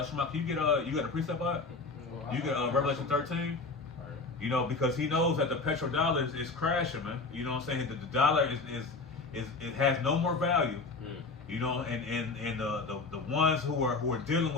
Shema, can you got a precept on it? You get Revelation 13. Because he knows that the petrodollar is crashing, man. You know what I'm saying? The dollar is it has no more value. And the ones who are dealing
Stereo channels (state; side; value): quieter; right; 3.9 dB